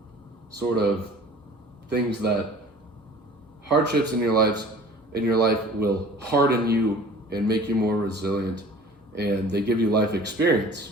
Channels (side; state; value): both; normal; correlation 0.46